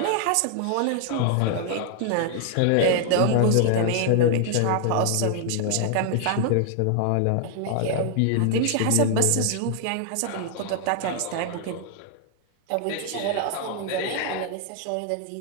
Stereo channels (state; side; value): different; both; correlation 0.00